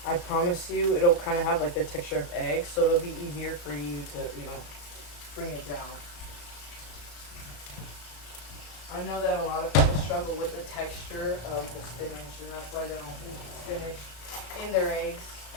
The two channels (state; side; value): late; right; 34 ms